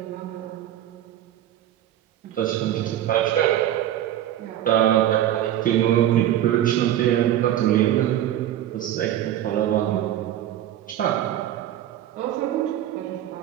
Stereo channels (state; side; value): quieter; left; 12.1 dB